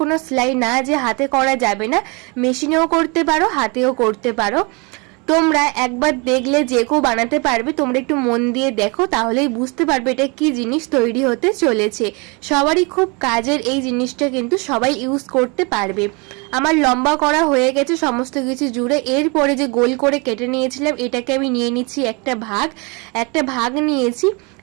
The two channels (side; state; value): left; quieter; 30.1 dB